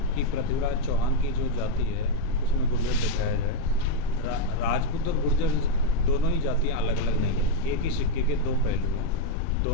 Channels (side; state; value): both; different; correlation 0.00